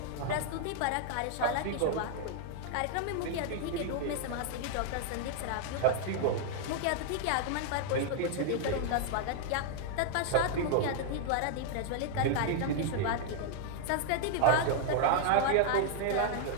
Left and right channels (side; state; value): both; different; correlation 0.00